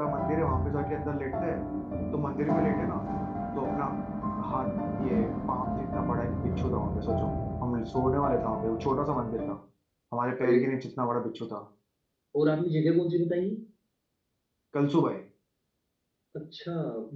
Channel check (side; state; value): both; identical; correlation 1.00